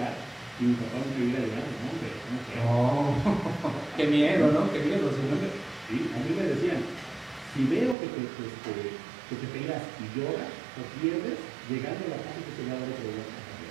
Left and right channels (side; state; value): left; drops out; at 8.0 s